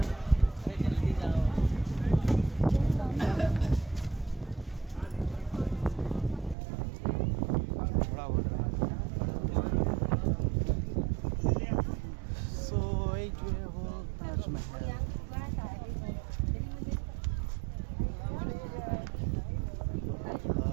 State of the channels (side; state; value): left; drops out; at 6.6 s